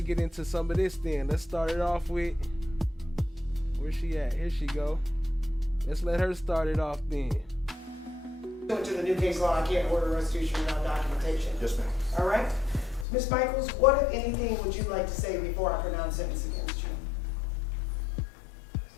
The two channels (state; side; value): drops out; right; at 13.1 s